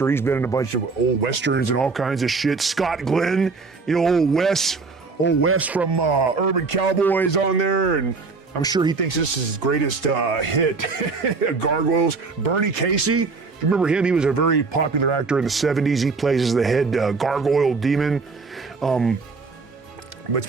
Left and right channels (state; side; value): quieter; left; 4.3 dB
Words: He's been in a bunch of old westerns and all kinds of shit. Scott Glenn, you know, old Wes from Urban Cowboys on there, and I'm sure he thinks this is his greatest hit. Gargoyles. Bernie Casey, you remember him? He was a very popular actor in the 70s. He plays as the head gargoyle demon. But it's